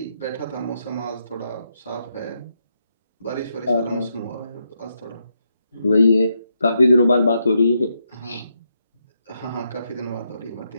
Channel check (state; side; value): inverted; both; correlation -0.81